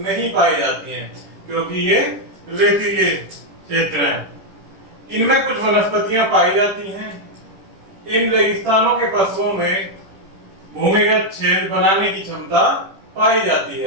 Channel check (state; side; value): late; left; 10 ms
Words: पाई जाती हैं, क्योंकि ये रेतीले क्षेत्र हैं। इनमें कुछ वनस्पतियां पाई जाती हैं। इन रेगिस्तानों के पशुओं में भूमिगत छेद बनाने की क्षमता पाई जाती